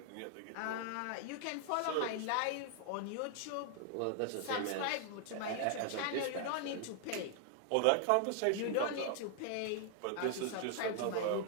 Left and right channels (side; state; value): both; different; correlation 0.00